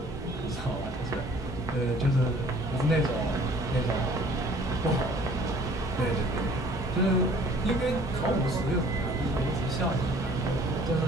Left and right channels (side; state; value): both; normal; correlation 0.54